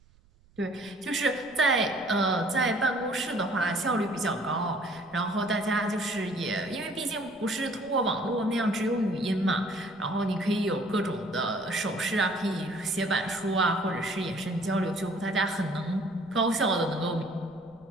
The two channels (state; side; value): noise; right; rumble, 29 dB below the sound